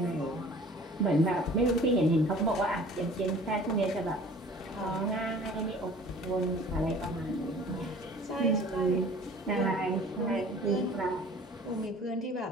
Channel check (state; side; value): normal; both; correlation 0.47